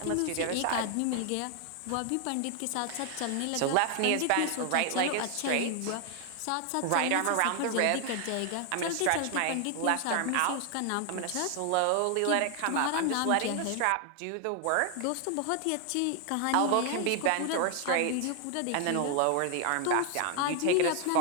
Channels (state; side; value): different; both; correlation 0.00